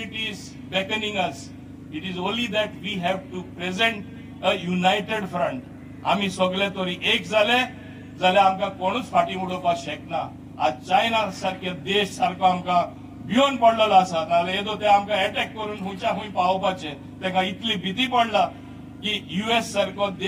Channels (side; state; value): both; identical; correlation 1.00